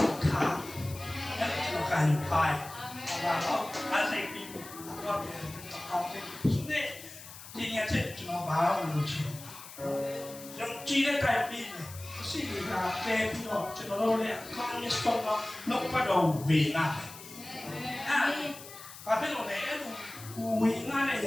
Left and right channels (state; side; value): noise; left; hiss, 15 dB below the sound